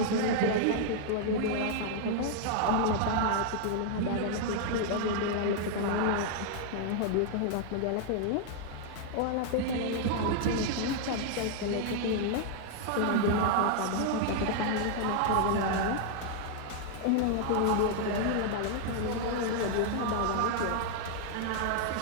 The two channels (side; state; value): both; different; correlation 0.00